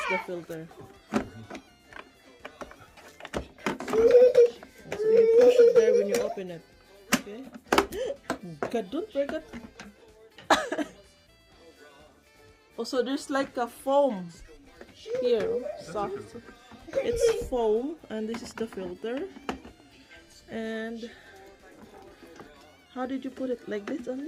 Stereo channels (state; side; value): identical; both; correlation 1.00